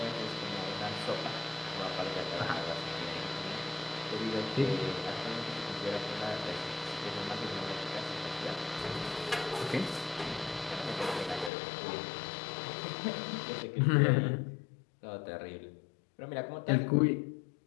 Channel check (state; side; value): drops out; right; at 11.5 s